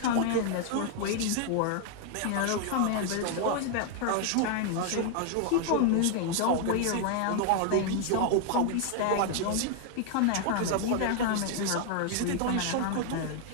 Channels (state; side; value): different; both; correlation 0.00